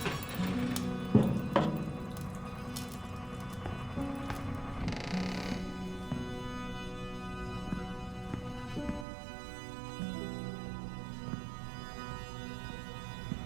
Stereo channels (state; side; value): drops out; left; at 9.1 s